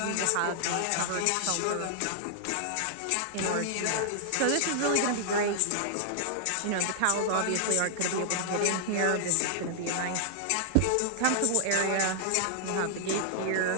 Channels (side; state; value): both; different; correlation -0.01